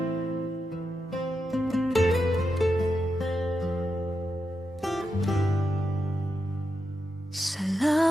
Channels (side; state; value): both; normal; correlation 0.86